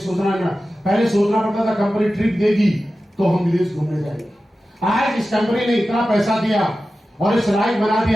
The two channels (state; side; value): normal; both; correlation 0.94